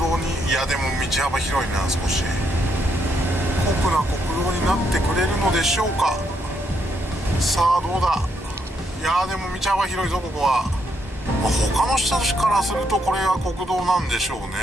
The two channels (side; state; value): both; normal; correlation 0.76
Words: に、いやでも道幅広いな。少し酷な国道になってくれるのでしょうか。さあどうだ。いやでも道幅広いぞここは。まあ、他の人からするとこれは国道なんでしょうね。